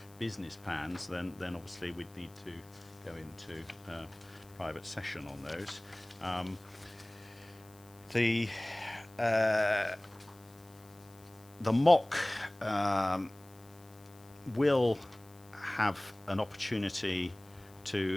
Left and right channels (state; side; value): noise; left; hiss, 26 dB below the sound